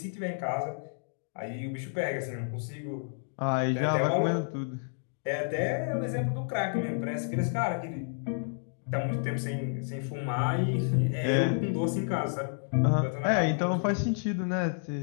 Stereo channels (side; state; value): right; silent; digital silence